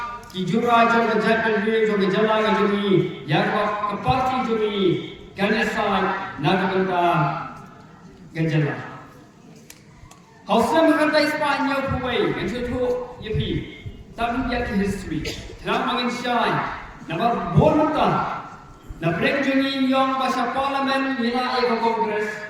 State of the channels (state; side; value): identical; both; correlation 1.00